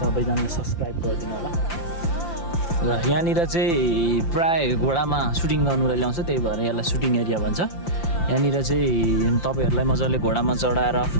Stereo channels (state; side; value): late; right; 5.8 ms